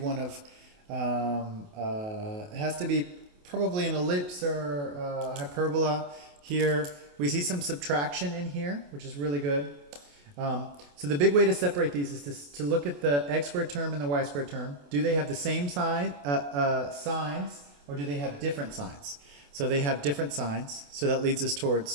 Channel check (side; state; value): left; late; 28 ms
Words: of, it has to be probably an ellipse or hyperbola here. We see some subtraction in here, which is really good. So the big way to separate these is to look at the x squared term and the y squared term. Do they have the same signs, or do they have different signs? So they have different signs, so that leads us